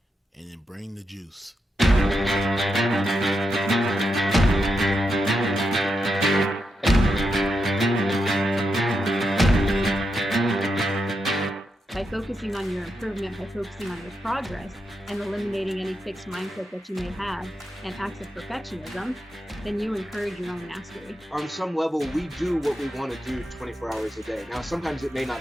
and then bring the juice. By focusing on your improvement, by focusing on your progress, and eliminating any fixed mindset that you may have and acts of perfectionism, then you encourage your own mastery. On some level, we do what we want to do 24 hours a day. Now, sometimes it may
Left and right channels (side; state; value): both; normal; correlation 0.85